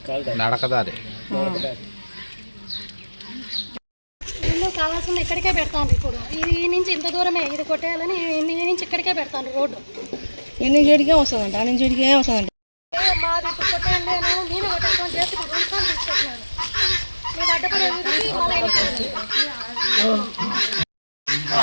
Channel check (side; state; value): both; inverted; correlation -1.00